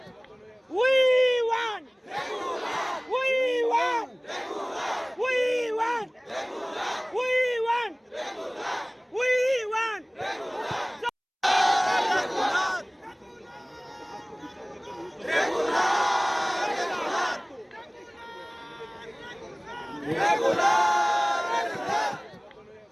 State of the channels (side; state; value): both; identical; correlation 1.00